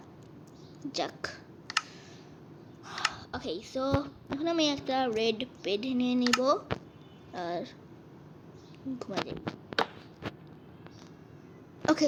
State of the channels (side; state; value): both; identical; correlation 1.00